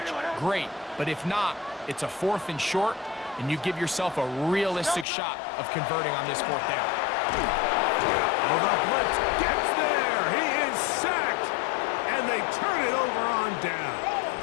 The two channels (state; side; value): drops out; right; at 5.1 s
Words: great. But if not, it's a 4th and short, and you give yourself a realistic shot of converting on this fourth down. Oh, the blitz gets there. He is sacked, and they turn it over on down.